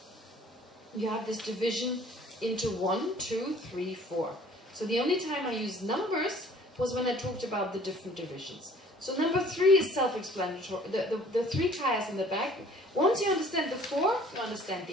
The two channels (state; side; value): normal; both; correlation 0.53